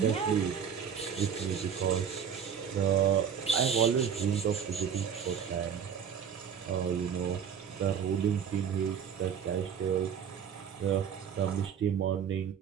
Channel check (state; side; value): quieter; left; 7.8 dB